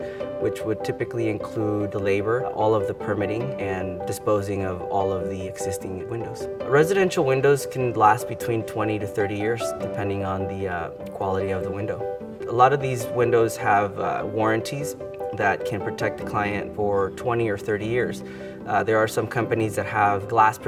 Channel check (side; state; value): both; identical; correlation 1.00